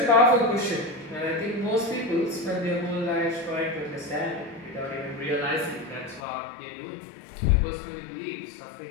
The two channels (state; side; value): drops out; right; at 6.2 s